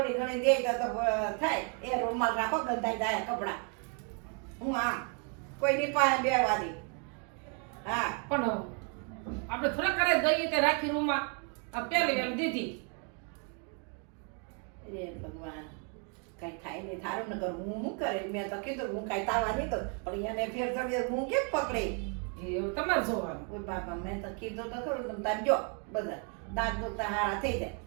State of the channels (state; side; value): quieter; left; 38.5 dB